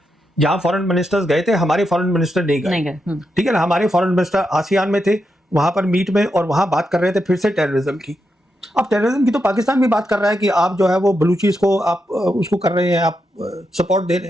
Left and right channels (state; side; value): normal; both; correlation 0.85